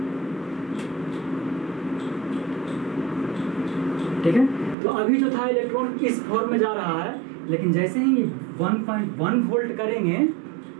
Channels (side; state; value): left; drops out; at 4.8 s